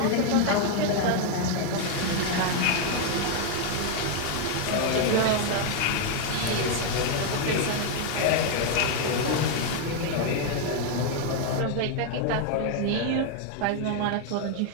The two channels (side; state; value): both; different; correlation 0.01